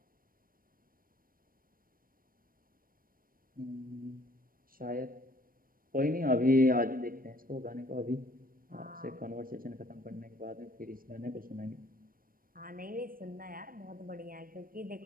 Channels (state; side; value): late; left; 0.41 ms